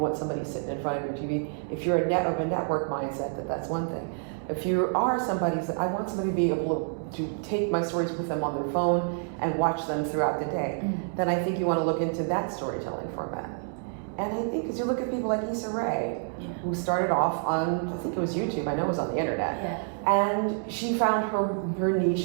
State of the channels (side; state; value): left; silent; 59 dB below the other